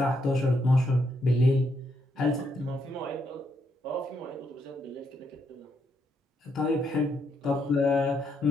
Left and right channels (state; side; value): normal; both; correlation 0.77